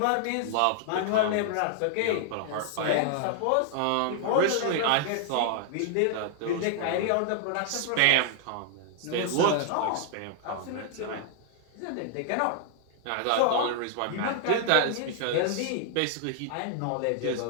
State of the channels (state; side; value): different; both; correlation 0.00